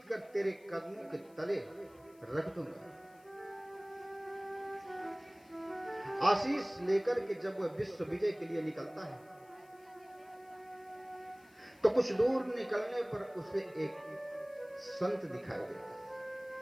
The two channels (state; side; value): noise; left; hiss, 29 dB below the sound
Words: कर तेरे कदमों के तले रख दूंगा। आशीष लेकर के जब वह विश्व विजय के लिए निकलता है, तो कुछ दूर निकलने पर उसे एक संत दिखाई देता है,